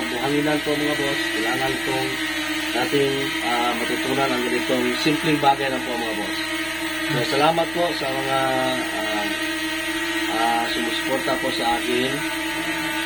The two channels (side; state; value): right; noise; hum, 16 dB below the sound